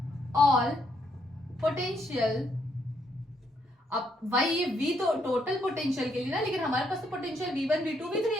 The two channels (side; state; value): both; normal; correlation 0.74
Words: ऑल पोटेंशियल, अब भाई ये V तो टोटल पोटेंशियल के लिए ना, लेकिन हमारे पास तो पोटेंशियल V1, V2, V3